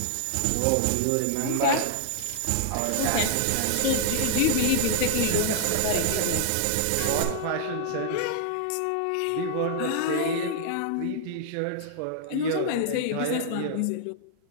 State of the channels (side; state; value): both; different; correlation 0.00